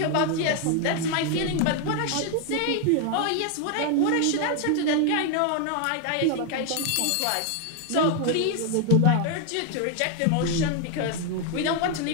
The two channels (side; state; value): both; different; correlation 0.01